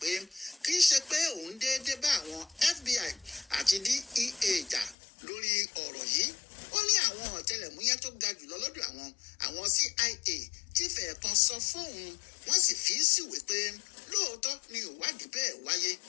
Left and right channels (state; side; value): drops out; right; at 5.0 s